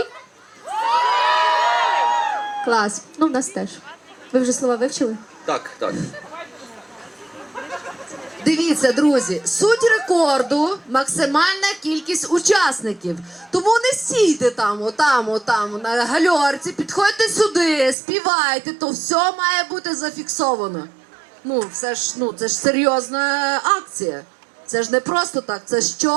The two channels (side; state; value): left; drops out; at 17.9 s